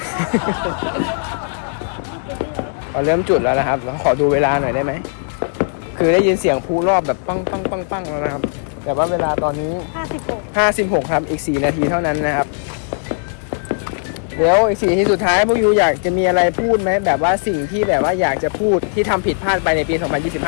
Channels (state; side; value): silent; right; digital silence